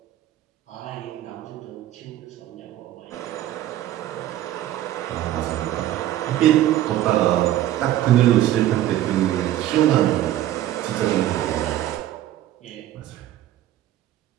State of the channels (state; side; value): quieter; left; 13.3 dB